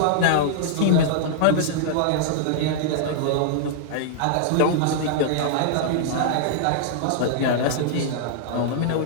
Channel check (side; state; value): both; different; correlation -0.01